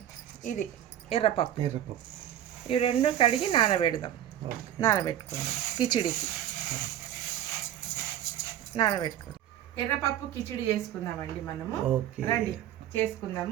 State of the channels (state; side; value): quieter; left; 11.5 dB